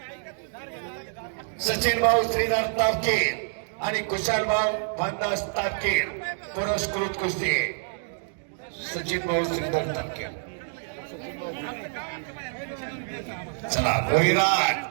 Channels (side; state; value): left; silent; digital silence